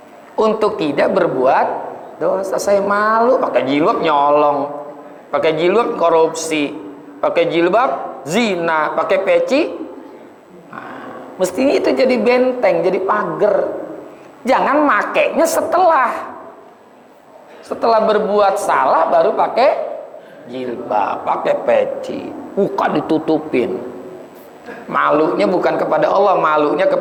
untuk tidak berbuat dosa. Saya malu pakai jilbab nyolong, pakai jilbab korupsi, pakai jilbab zina, pakai peci. Nah, mestinya itu jadi benteng, jadi pagar. Jangan makainya setelah berbuat salah baru pakai jilbab, pakai peci, muka ditutupin. Malunya bukan kepada Allah, malunya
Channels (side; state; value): both; identical; correlation 1.00